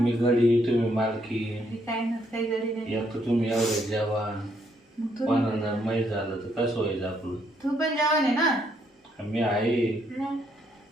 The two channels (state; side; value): normal; both; correlation 0.73